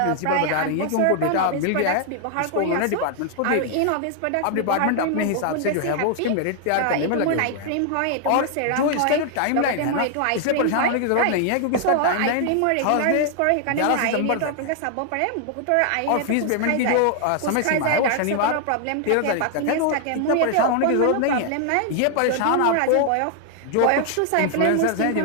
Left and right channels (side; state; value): both; different; correlation 0.00